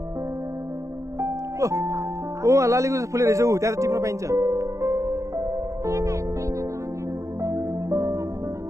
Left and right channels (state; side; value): late; left; 0.15 ms